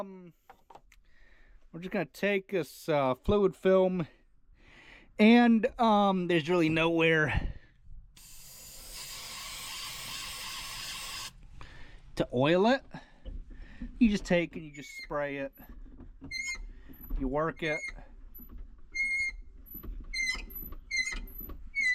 just gonna take this fluid film, and there's really nowhere to oil it. You just take and you just spray it, you work it.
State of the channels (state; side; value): identical; both; correlation 1.00